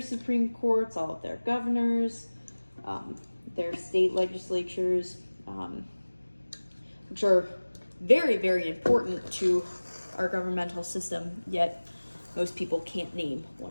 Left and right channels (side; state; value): both; inverted; correlation -1.00